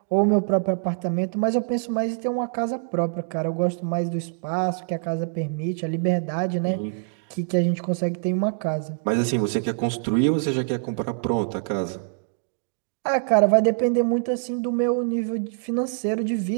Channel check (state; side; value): silent; left; digital silence